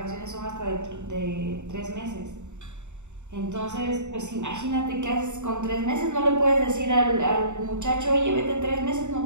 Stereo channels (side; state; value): left; late; 0.84 ms